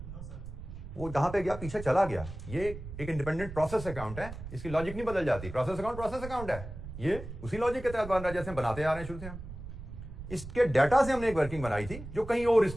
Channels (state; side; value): noise; right; rumble, 11 dB below the sound